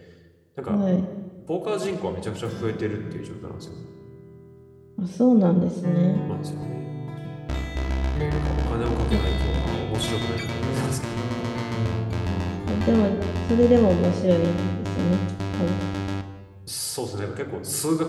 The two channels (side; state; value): both; identical; correlation 1.00